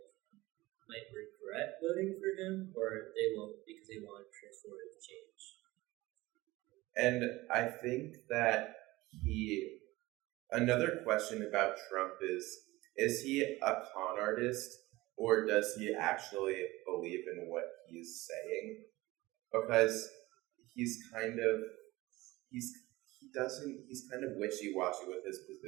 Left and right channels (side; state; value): left; quieter; 19.7 dB